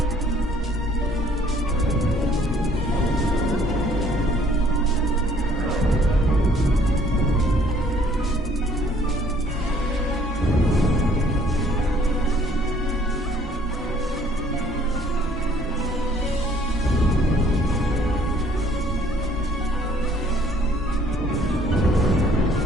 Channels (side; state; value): both; normal; correlation 0.59